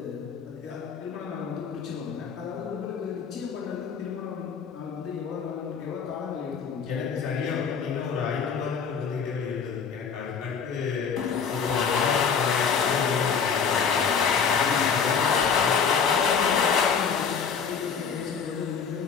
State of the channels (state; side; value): quieter; right; 6.3 dB